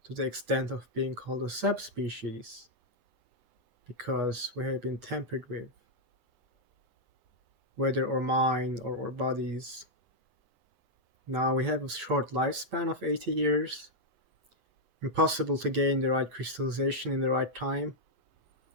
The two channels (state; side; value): late; left; 8.8 ms